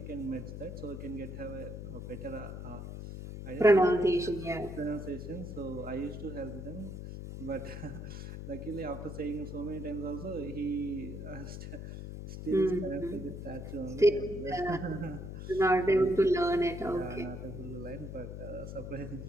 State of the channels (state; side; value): noise; left; hum, 8 dB below the sound